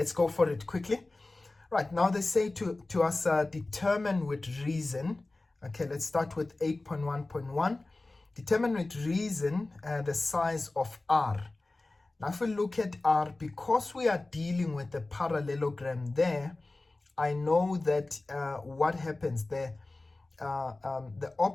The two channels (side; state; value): right; quieter; 3.1 dB